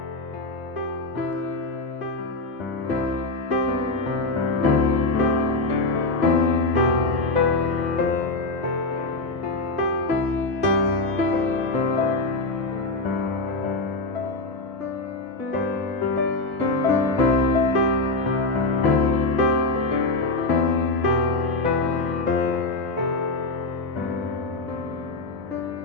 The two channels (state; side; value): quieter; right; 3.1 dB